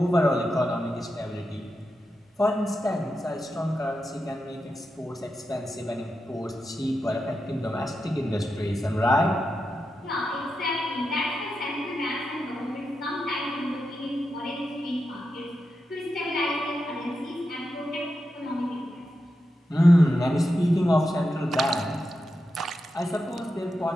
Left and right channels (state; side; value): normal; both; correlation 0.88